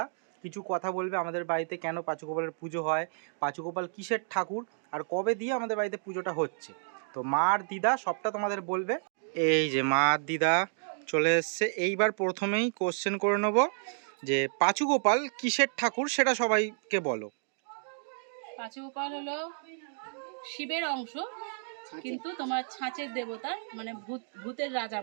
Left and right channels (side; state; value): left; silent; digital silence